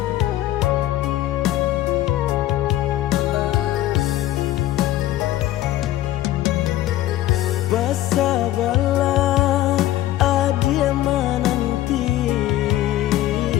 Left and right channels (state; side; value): quieter; right; 14.3 dB